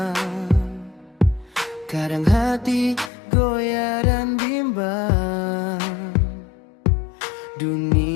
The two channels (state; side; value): drops out; right; at 3.1 s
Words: kadang hati goyah dan bimbang.